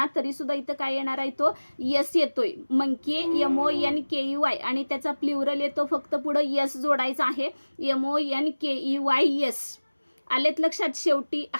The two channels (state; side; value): inverted; both; correlation -1.00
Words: तरी सुद्धा इथं काय येणार आहे तो यस येतोय. मंकी MONKEY आणि त्याचा प्ल्युरल येतो फक्त पुढं यस जोडायचा आहे, MONKEY यस. आलेत लक्षात. शेवटी